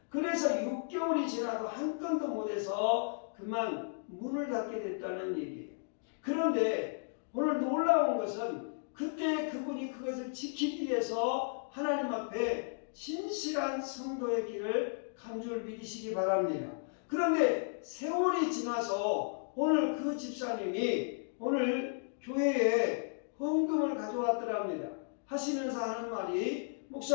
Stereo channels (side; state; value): right; silent; digital silence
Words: 그래서 6개월이 지나도 한 건도 못해서 그만 문을 닫게 됐다는 얘기예요. 그런데 오늘 놀라운 것은 그때 그분이 그것을 지키기 위해서 하나님 앞에 진실한 성도의 길을 간 줄 믿으시기 바랍니다. 그런데 세월이 지나서 오늘 그 집사님이 오늘 교회에 헌금을 가져왔더랍니다. 하시면서 하는 말이